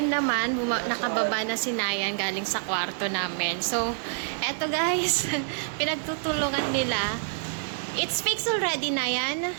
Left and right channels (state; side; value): silent; left; 59 dB below the other